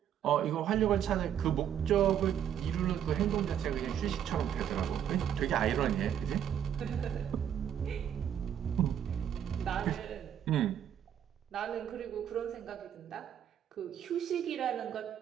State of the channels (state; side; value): quieter; left; 9.5 dB